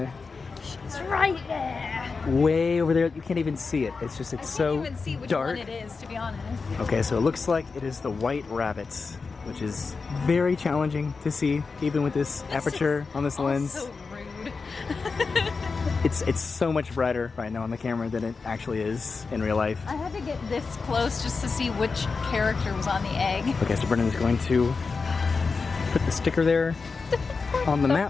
It's right there. way over there. You can't even see it. It's just, it's so I can't even see which dark. one it is, to be honest. Okay, so it looks like it is the white rabbit, which is very challenging to see, even with this aperture on this lens. So rude. It's so much brighter right now on the camera than it actually is in real life. I had to get this close just to see which character was on the egg. Okay, so Brennan is going to put the sticker there on the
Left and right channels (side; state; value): right; quieter; 4.6 dB